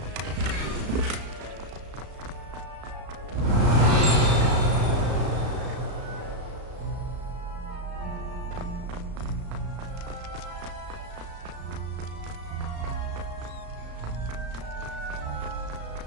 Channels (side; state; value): left; late; 35 ms